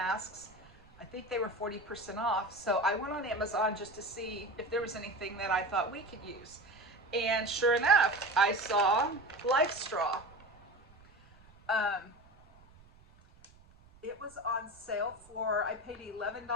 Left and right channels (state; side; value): noise; right; rumble, 26 dB below the sound